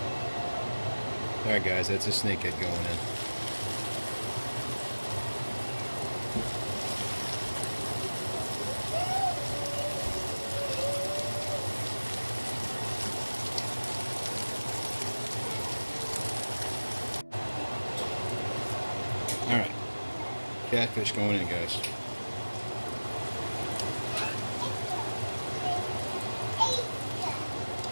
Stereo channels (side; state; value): both; inverted; correlation -1.00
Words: Alright guys, that's a snakehead going in. catfish going in, guys.